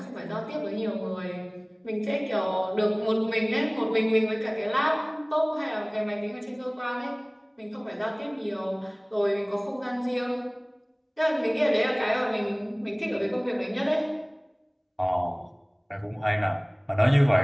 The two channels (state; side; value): identical; both; correlation 1.00